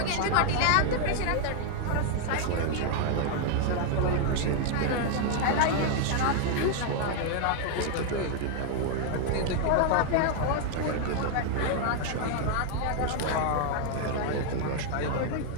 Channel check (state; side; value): different; both; correlation 0.00